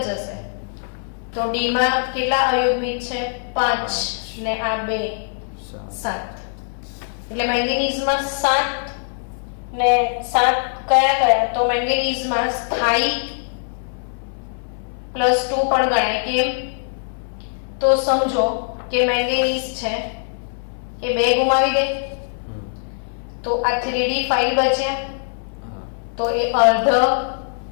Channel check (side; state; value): right; silent; 64 dB below the other